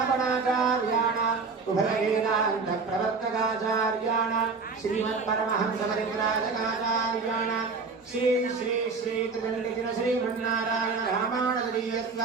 उभयवेदान्त प्रवर्तकाचार्याणां श्रीमत्परमहंस परिव्राजकाचार्याणां श्री श्री श्री त्रिदण्डिन श्रीमन्नारायण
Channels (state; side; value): quieter; left; 4.5 dB